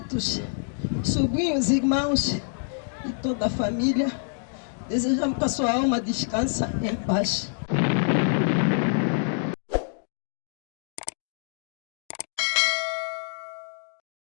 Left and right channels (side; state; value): right; silent; digital silence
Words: sobrinhos, irmãos e toda a família, desejamos que a sua alma descanse em paz.